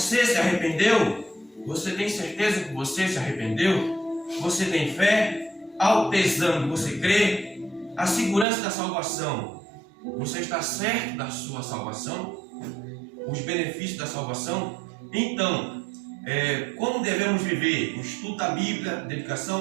se arrependeu? Você tem certeza que você se arrependeu? Você tem fé? Autoexame, você crê? A segurança da salvação. Você está certo da sua salvação? Os benefícios da salvação? Então, como devemos viver? O estudo da Bíblia, dedicação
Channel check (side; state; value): left; drops out; at 8.5 s